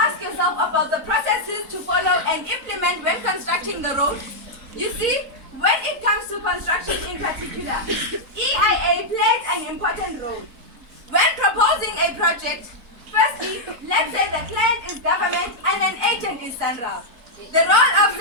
asked yourself about the processes to follow and implement when constructing the road? You see, when it comes to construction in particular, EIA plays an important role. When proposing a project, firstly, let's say the client is government and an agent is Central. The role of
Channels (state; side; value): late; left; 3.9 ms